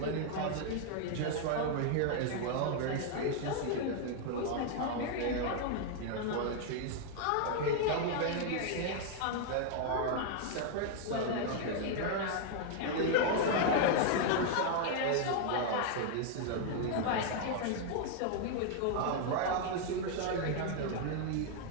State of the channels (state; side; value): different; both; correlation 0.00